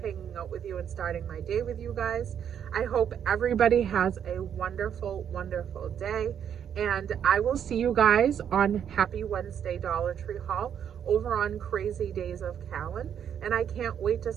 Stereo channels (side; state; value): left; quieter; 8.7 dB